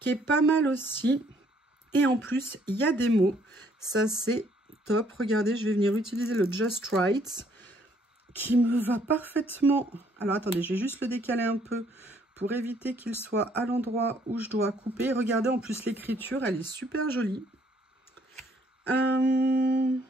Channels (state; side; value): normal; both; correlation 0.65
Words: est pas mal aussi. Et en plus, il y a des mots. Ça, c'est top. Regardez, je vais venir utiliser le Just Right qui me va parfaitement. Alors, attendez, je vais juste le décaler un peu pour éviter qu'il soit à l'endroit où je dois couper. Regardez, en plus, l'écriture, elle est super jolie.